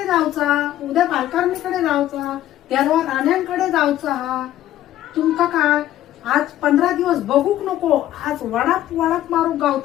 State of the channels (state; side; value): quieter; right; 13.2 dB